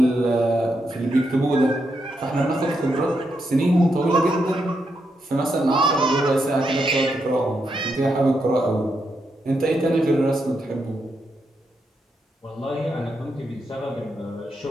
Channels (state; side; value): normal; both; correlation 0.82